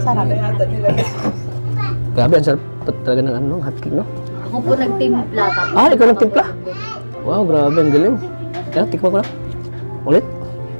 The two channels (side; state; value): both; inverted; correlation -1.00